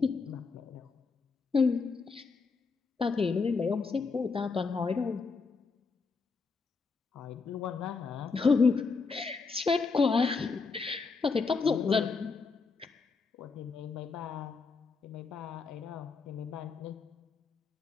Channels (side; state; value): right; quieter; 4.6 dB